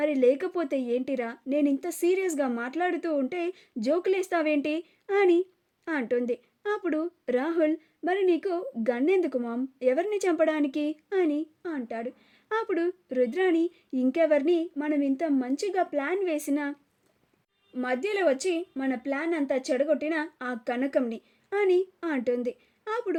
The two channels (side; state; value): both; identical; correlation 1.00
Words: లేకపోతే ఏంటిరా, నేను ఇంత సీరియస్గా మాట్లాడుతూ ఉంటే జోకులేస్తావేంటి అని అంటుంది. అప్పుడు రాహుల్, మరి నీకు గన్నెందుకు మామ్, ఎవరిని చంపడానికి అని అంటాడు. అప్పుడు రుద్రాని, ఇంకెవరిని, మనం ఇంత మంచిగా ప్లాన్ వేసిన మధ్యలో వచ్చి మన ప్లాన్ అంతా చెడగొట్టిన ఆ కనకంని అని అంటుంది.